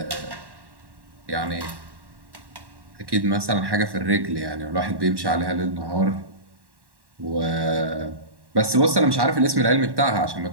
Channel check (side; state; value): left; late; 1.1 ms